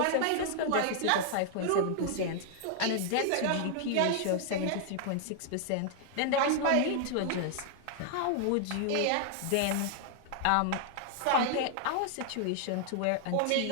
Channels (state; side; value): different; both; correlation 0.00